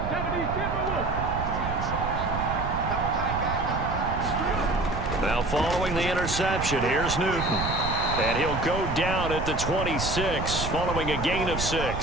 Now following the interception, here's Newton. And he'll go down at the 26 following a gain of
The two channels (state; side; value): noise; right; rumble, 5 dB below the sound